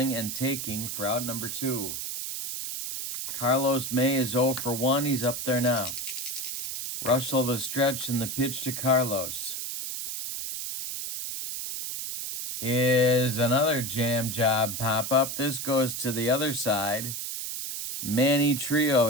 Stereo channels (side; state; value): right; noise; hiss, 5 dB below the sound